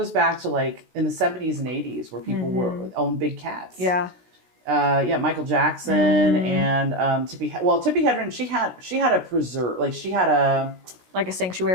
back to like in the 70s and 80s where people owned big cats. Yeah. Michael Jackson and Tippi Hedren. She had a preserve, like she had a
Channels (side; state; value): left; late; 16 ms